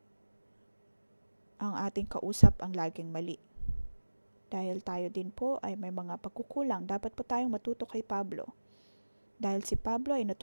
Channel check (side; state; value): both; inverted; correlation -1.00